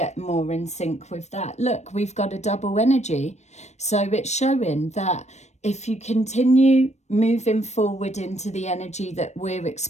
more in sync with that. Look, we've got a double energy. So it's showing that if you continue moving forward into the energy that we're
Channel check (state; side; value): late; right; 0.33 ms